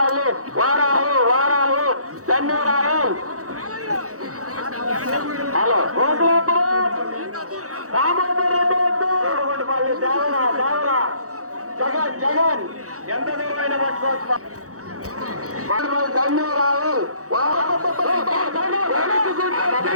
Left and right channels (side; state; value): left; late; 0.65 ms